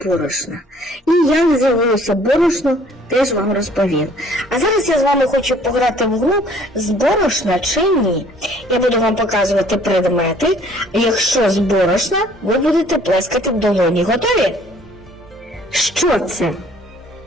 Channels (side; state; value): both; normal; correlation 0.57